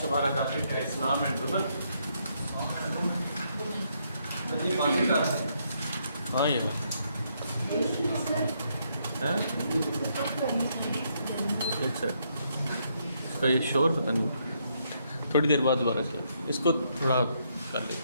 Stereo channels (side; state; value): both; inverted; correlation -0.75